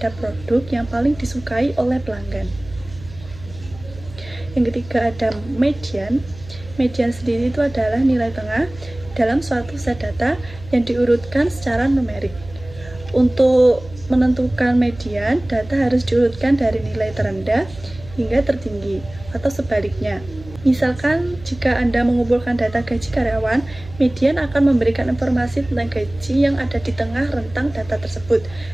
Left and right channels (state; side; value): noise; right; hum, 17 dB below the sound